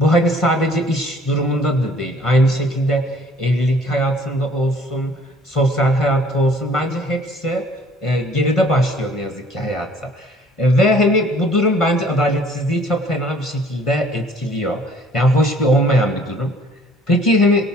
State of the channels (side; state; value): both; normal; correlation 0.56